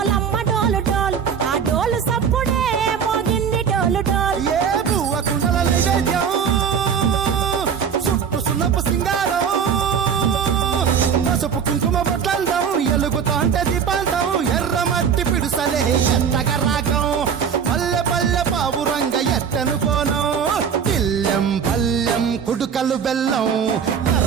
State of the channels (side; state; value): left; quieter; 7.1 dB